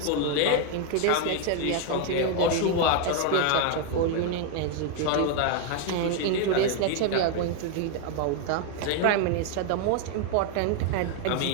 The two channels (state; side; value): different; both; correlation 0.00